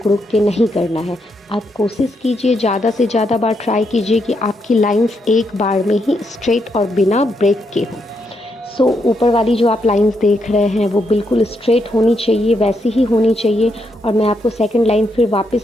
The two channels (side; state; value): both; normal; correlation 0.79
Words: रुक के नहीं करना है. आप कोशिश कीजिए, ज़्यादा से ज़्यादा बार ट्राई कीजिए कि आपकी लाइंस एक बार में ही स्ट्रेट और बिना ब्रेक के हों. सो ऊपर वाली जो आप लाइंस देख रहे हैं वो बिल्कुल स्ट्रेट होनी चाहिए, वैसी ही होनी चाहिए. और मैं आपको सेकंड लाइन फिर